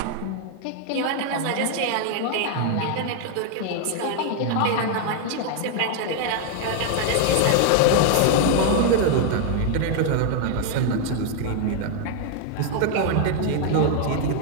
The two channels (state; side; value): different; both; correlation 0.00